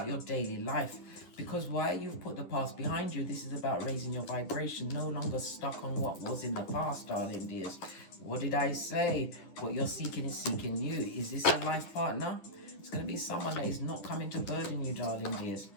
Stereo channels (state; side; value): late; right; 10 ms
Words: your daily life. Because why? You've put the past behind you. This is about raising your vibration. No longer stuck on what was in the past, darling dears. What did I say? What you're seeking is seeking you. Is this a life partner? It's going to be someone that is not coming to burden you, darling dears.